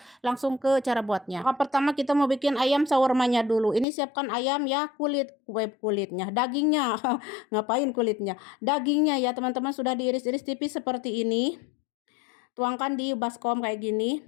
langsung ke cara buatnya. Pertama kita mau bikin ayam shawarmanya dulu. Ini siapkan ayam ya, kulitnya, dagingnya. Ngapain kulitnya? Dagingnya ya teman-teman sudah diiris-iris tipis seperti ini. Tuangkan di baskom kayak gini.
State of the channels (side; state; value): right; drops out; at 3.9 s